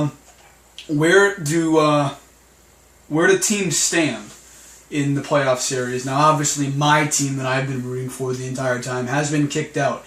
Where do teams stand in the playoff series? Now, obviously, my team that I've been rooting for the entire time has been kicked out.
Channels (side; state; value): both; identical; correlation 1.00